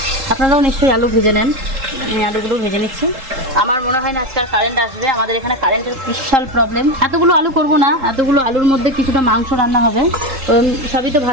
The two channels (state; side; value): late; left; 3.7 ms